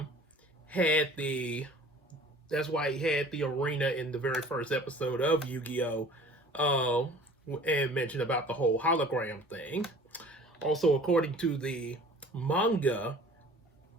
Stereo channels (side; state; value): both; normal; correlation 0.46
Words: had the arena in the very first episode of Yu-Gi-Oh, and mentioned about the whole hologram thing. Also, according to the manga